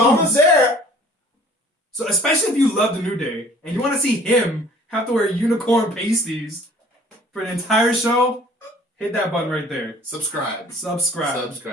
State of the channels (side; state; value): both; normal; correlation 0.52